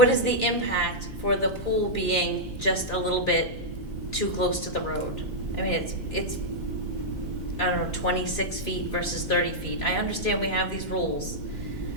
the impact for the pool being just a little bit too close to the road? I mean, it's I don't know, 26 feet versus 30 feet. I understand we have these rules,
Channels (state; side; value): normal; both; correlation -0.07